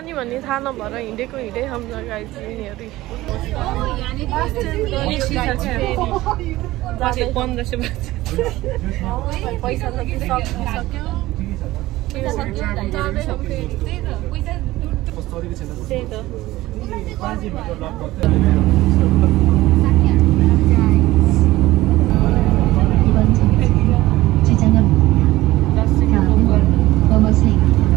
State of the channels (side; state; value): left; quieter; 17.3 dB